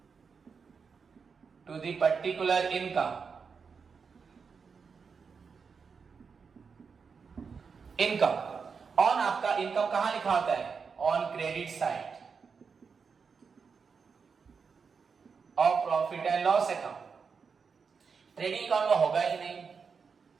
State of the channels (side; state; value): left; quieter; 5.6 dB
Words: to the particular income. Income on, आपका इनकम कहां लिखा होता है, ऑन क्रेडिट साइड और profit and loss account. Trading account में होगा ही नहीं।